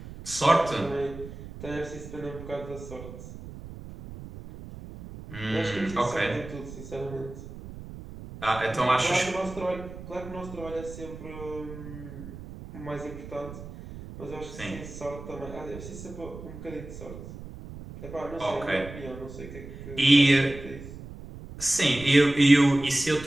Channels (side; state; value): right; noise; rumble, 13 dB below the sound